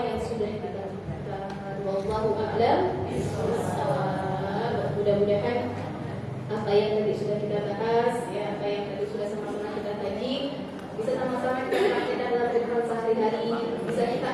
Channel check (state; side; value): identical; both; correlation 1.00